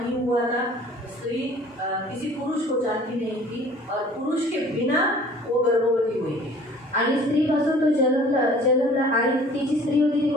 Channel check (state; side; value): normal; both; correlation 0.50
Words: हुआ था. स्त्री किसी पुरुष को जानती नहीं थी और पुरुष के बिना वो गर्भवती हुई थी. आणि स्त्रीपासून तो जन्मला आणि तिची स्त्री होती ती